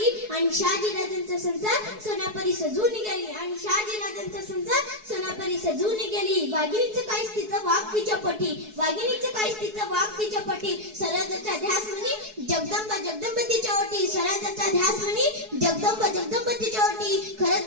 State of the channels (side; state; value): left; late; 4.7 ms